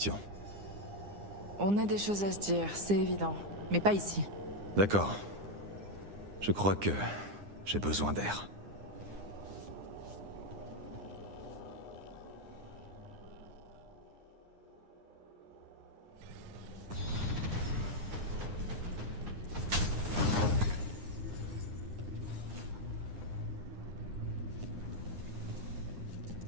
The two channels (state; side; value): late; left; 9.8 ms